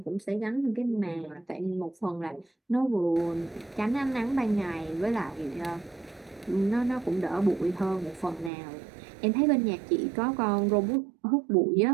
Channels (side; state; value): left; drops out; at 8.5 s